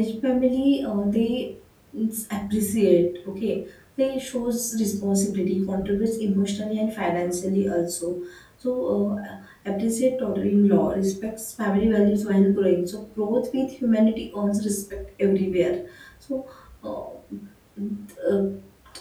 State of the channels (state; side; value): identical; both; correlation 1.00